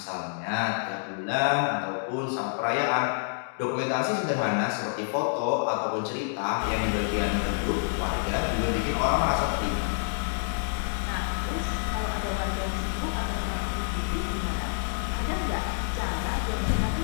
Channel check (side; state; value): right; silent; digital silence